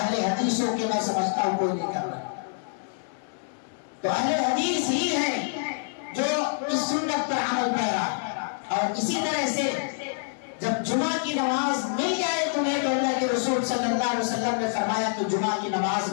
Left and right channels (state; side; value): silent; right; digital silence